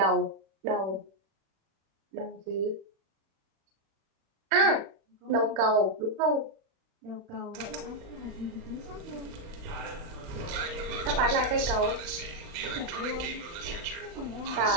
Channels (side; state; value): left; late; 36 ms